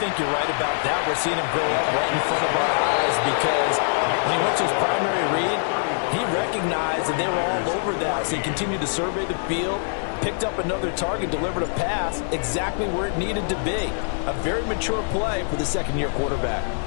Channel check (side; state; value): right; silent; 63 dB below the other